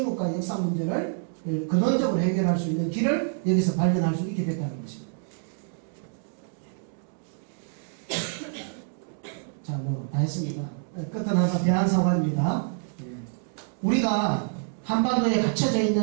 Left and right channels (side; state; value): left; silent; 60 dB below the other